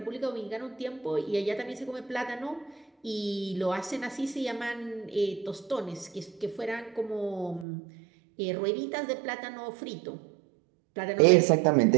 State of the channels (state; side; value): drops out; left; at 7.7 s